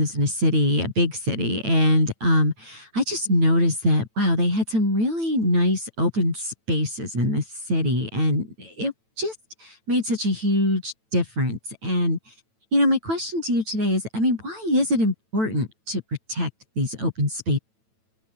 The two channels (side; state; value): left; late; 9.1 ms